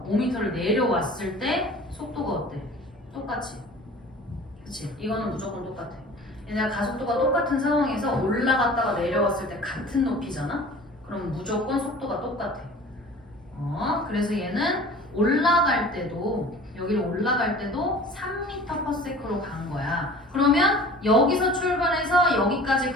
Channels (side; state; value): both; normal; correlation 0.44